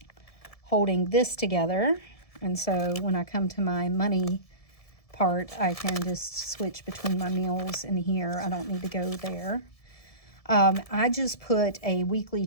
holding this together. And so when I come to my money part, I can just switch between my meals and here. I don't need to go there. I just put a weekly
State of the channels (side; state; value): right; late; 1.7 ms